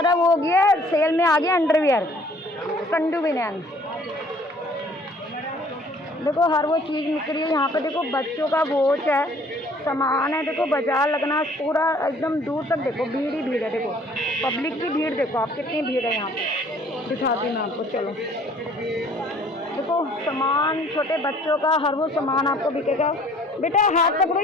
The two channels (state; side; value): normal; both; correlation 0.56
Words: वो हो गया है, सेल में आ गया अंडरवियर। संडू बनियान देखो, हर वो चीज़ निकली है यहाँ पे। देखो बच्चों का वॉच है, सामान है। देखो बाजार लगना पूरा एकदम दूर तक। देखो भीड़ ही भीड़ है। देखो पब्लिक की भीड़ देखो आप, कितनी भीड़ है यहाँ पे। दिखाती हूँ मैं आपको, चलो। देखो सामान छोटे बच्चों का, हर वो सामान आपको बिकेगा। बेटा हाथ पकड़ो